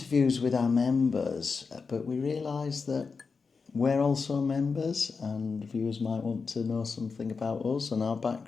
with our members, but we realise that we're also members and viewers might want to know something about us and our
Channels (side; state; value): right; quieter; 4.9 dB